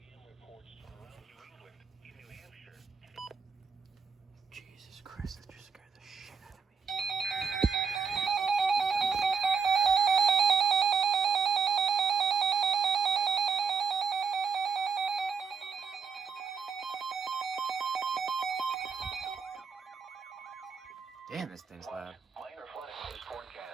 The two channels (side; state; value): left; quieter; 5.7 dB